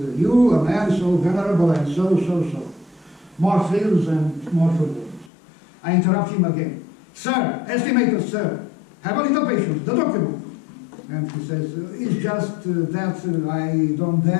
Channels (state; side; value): drops out; right; at 5.3 s